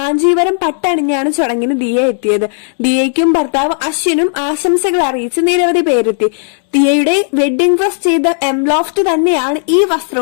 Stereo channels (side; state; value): right; silent; digital silence